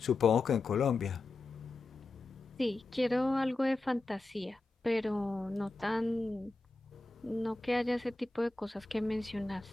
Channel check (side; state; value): right; quieter; 3.2 dB